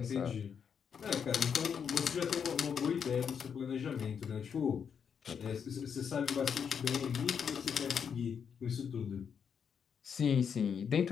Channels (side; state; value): right; quieter; 7.1 dB